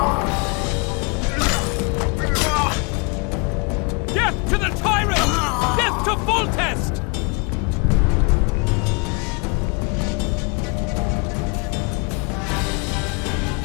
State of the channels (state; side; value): quieter; right; 32.0 dB